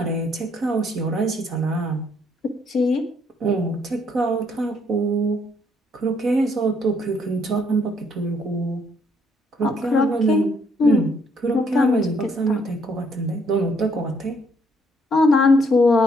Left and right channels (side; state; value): both; normal; correlation 0.69